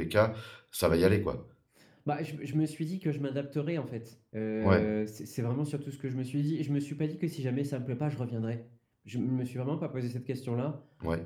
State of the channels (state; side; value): identical; both; correlation 1.00